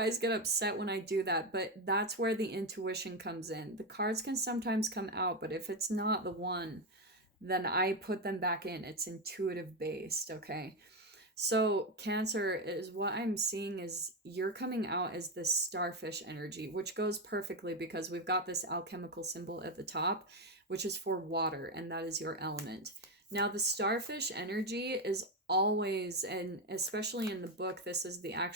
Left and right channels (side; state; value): both; normal; correlation 0.10